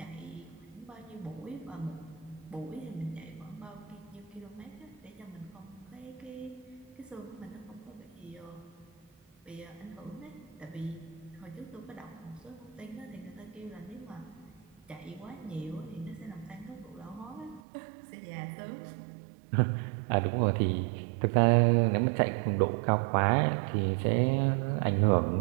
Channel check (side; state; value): left; drops out; at 17.6 s